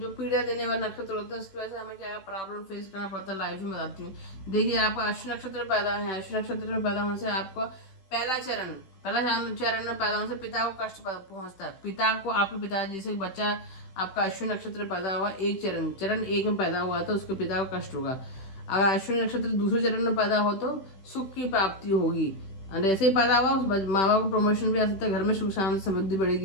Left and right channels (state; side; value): late; right; 15 ms